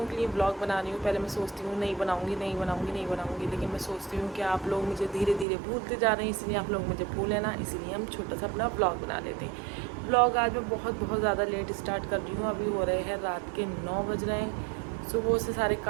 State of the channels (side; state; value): left; drops out; at 5.5 s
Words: के लिए ब्लॉग बना रही हूँ। पहले मैं सोचती हूँ नहीं बनाऊँगी, लेकिन मैं सोचती हूँ कि आप लोग मुझे धीरे धीरे भूलते जा रहे हैं, इसलिए आप लोग मुझे भूलें ना, इसलिए हम छोटा सा अपना ब्लॉग बना लेते हैं। ब्लॉग आज मैं बहुत ज़्यादा लेट स्टार्ट कर रही हूँ। अभी हो रहे हैं रात के 9 बज रहे हैं। सुबह से सारे